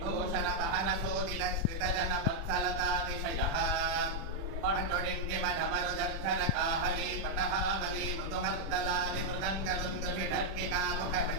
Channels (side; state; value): left; late; 36 ms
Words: पहन सोदित श्रित जन वत्सलतातिशयः पटुडिण्डिमढमरुदर्धर काहली पटहावली मृदुमर्दलादि मृदङ्गदुन्दुभिढर्किका